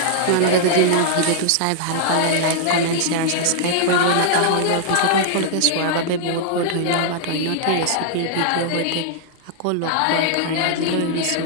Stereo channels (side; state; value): both; different; correlation -0.01